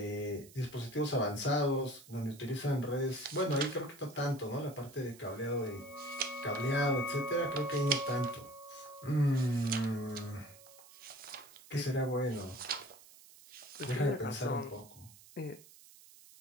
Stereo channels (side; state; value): right; noise; hiss, 21 dB below the sound